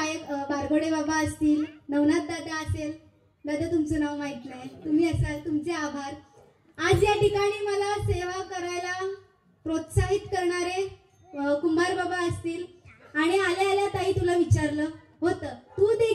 बारगोडे बाबा असतील, नवनाथ दादा असेल. दादा तुमचं नाव माहित नाही, तुम्ही असाल, तुमचे आभार. आज या ठिकाणी मला सेवा करायला प्रोत्साहित करणारे कुंभार बाबा असतील. आणि आल्या आल्या ताई तुला विचारलं होतं, तू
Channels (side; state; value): both; identical; correlation 1.00